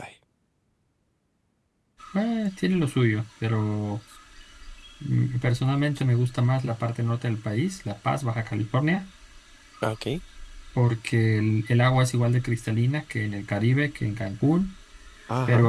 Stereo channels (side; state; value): both; identical; correlation 1.00